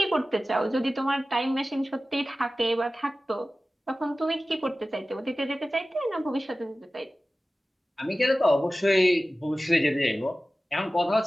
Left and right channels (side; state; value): both; normal; correlation 0.96